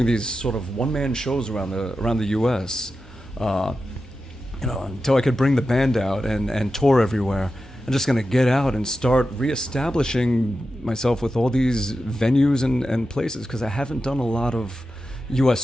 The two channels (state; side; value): normal; both; correlation 0.91